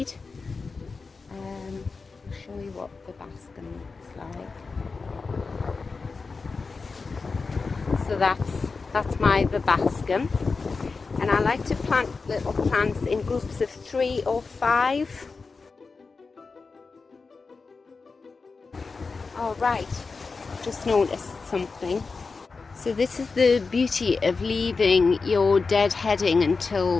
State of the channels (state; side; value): quieter; right; 4.4 dB